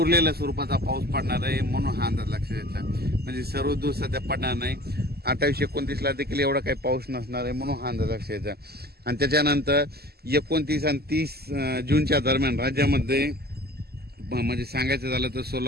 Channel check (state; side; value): late; left; 0.46 ms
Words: स्वरूपाचा पाऊस पडणार आहे म्हणून हा अंदाज लक्षात घ्यायचा. म्हणजे सर्वदूर सध्या पडणार नाही. 28-29 देखील एवढा काही पाऊस नसणार आहे म्हणून हा अंदाज लक्षात घ्यायचा. आणि त्याच्यानंतर 29 आणि 30 जूनच्या दरम्यान राज्यामध्ये म्हणजे सांगायचं झालं तर